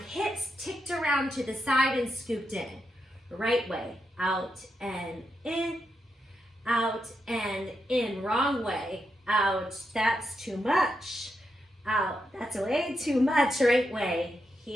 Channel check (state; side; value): normal; both; correlation 0.84